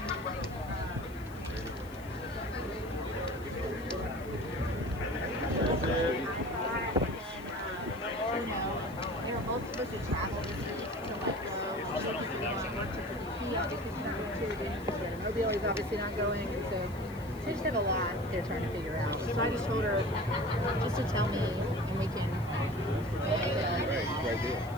They were both supposed to travel this week to like go work to Mobile is obviously not going, and so they just have a lot they're trying to figure out. So I just told her just to tell me, and we can.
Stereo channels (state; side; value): noise; left; hiss, 23 dB below the sound